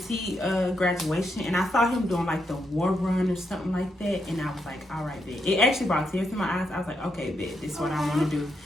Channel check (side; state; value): both; normal; correlation 0.81